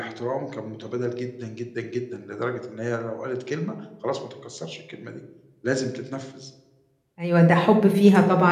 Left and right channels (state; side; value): identical; both; correlation 1.00